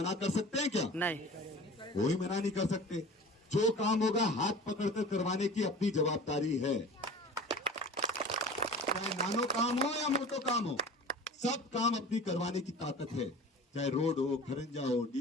कर सकते हैं क्या? नहीं, कोई मना नहीं कर सकते। जो काम होगा हाथ पकड़कर करवाने की अपनी जवाबदारी है। चाहे नानो काम हो या मोटो काम हो, सब काम अपनी करवाने की ताकत है। चाहे रोड हो, खरंजा हो,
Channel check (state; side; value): normal; both; correlation 0.38